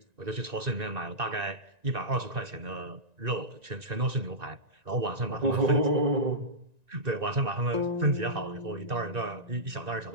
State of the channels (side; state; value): left; late; 1.9 ms